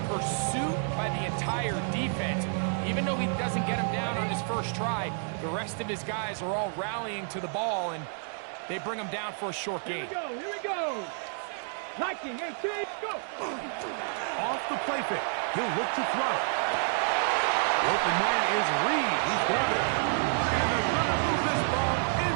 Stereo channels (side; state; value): left; silent; 58 dB below the other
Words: pursuit by the entire defense. Even though he doesn't get him down on his first try, the rest of his guys are all rallying to the ball, and they bring him down for a short Here gain. we go, here we go. Hiking, 18, go. Off the play fake. He'll look to throw. The open man is Reed. He's got it. And they're going to move this ball